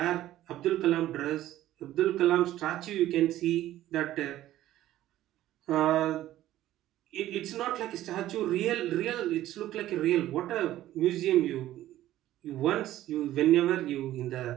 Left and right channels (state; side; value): quieter; left; 14.0 dB